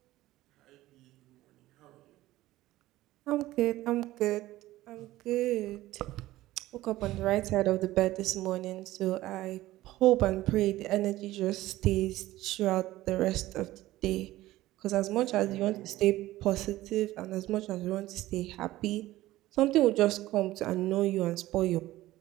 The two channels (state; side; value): quieter; left; 16.4 dB